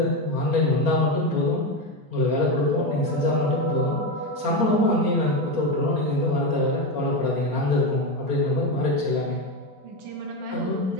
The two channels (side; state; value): left; late; 4.3 ms